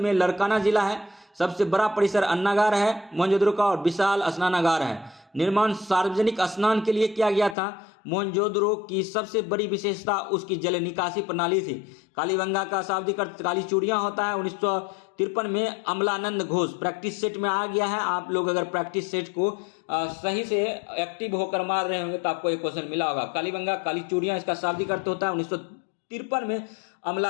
लरकाना जिला है। सबसे बड़ा परिसर अन्नागार है मोहनजोदड़ो का, और विशाल स्नानागार है। निर्माण सार्वजनिक स्नान के लिए किया गया था। मोहनजोदड़ो की सबसे बड़ी विशेषता उसकी जल निकासी प्रणाली थी। कालीबंगा का शाब्दिक अर्थ काली चूड़ियां होता है। 1953 में अमलानंद घोष प्रैक्टिस सेट में आ गया है। आप लोग अगर प्रैक्टिस सेट को सही से एक्टिव होकर मार रहे होंगे तो आपको एक क्वेश्चन मिला होगा। कालीबंगा काली चूड़ियां इसका शाब्दिक अर्थ होता है। 1953 में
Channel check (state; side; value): drops out; right; at 7.6 s